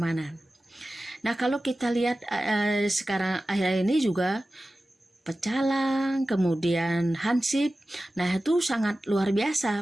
Nah, kalau kita lihat sekarang akhir ini juga Pecalang, kemudian Hansip, nah itu sangat luar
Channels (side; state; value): both; normal; correlation 0.95